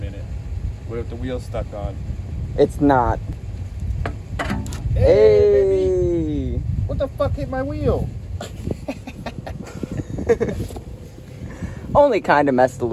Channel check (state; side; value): identical; both; correlation 1.00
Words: What if the wheel's stuck on? It's not. Hey! Baby. What the fuck hit my wheel? Only kind of messed a